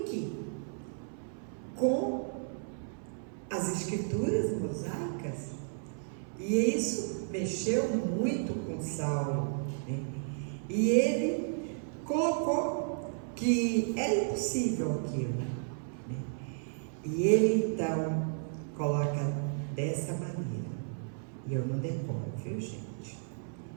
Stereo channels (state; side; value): silent; left; 56 dB below the other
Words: com as escrituras mosaicas. E isso mexeu muito com Saulo, né? E ele colocou que era impossível aquilo, né? E ele então coloca dessa maneira, e eu não decoro, viu, gente?